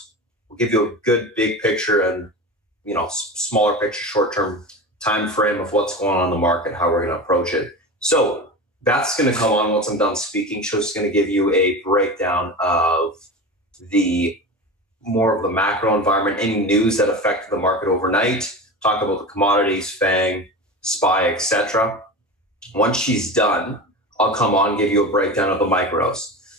We'll give you a good big picture and, smaller picture, short-term time frame of what's going on in the market, how we're going to approach it. So Beth's going to come on once I'm done speaking. She's going to give you a breakdown of more of the macro environment, any news that affected the market overnight, talk about the commodities, Fang, SPY, etc. Once she's done, I'll come on, give you a breakdown of the micros.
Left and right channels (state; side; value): normal; both; correlation 0.28